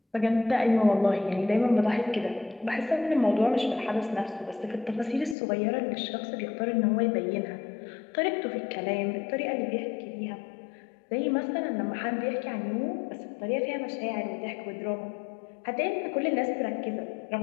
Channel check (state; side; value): drops out; right; at 5.4 s